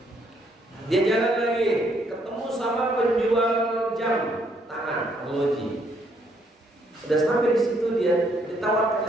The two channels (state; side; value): normal; both; correlation 0.70